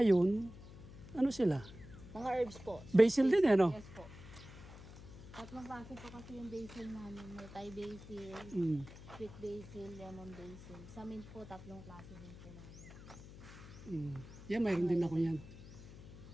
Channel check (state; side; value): noise; left; hum, 15 dB below the sound